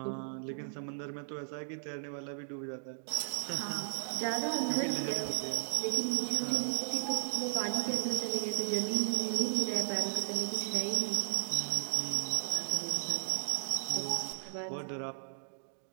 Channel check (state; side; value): silent; left; digital silence